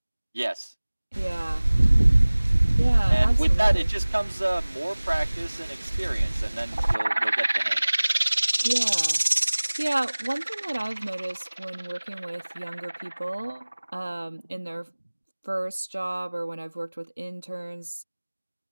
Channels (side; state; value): both; inverted; correlation -1.00